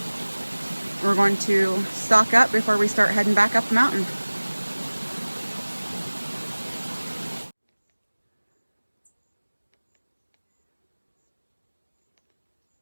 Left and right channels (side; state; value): both; inverted; correlation -1.00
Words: We're going to stock up before we start heading back up the mountain.